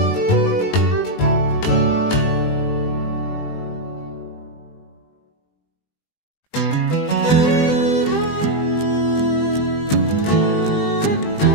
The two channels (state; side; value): late; right; 20 ms